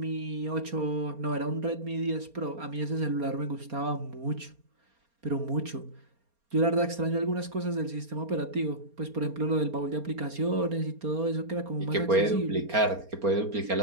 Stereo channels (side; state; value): left; late; 4.3 ms